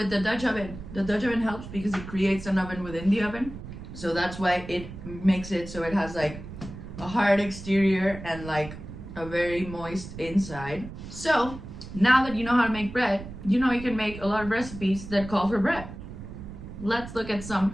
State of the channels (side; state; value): right; noise; rumble, 12 dB below the sound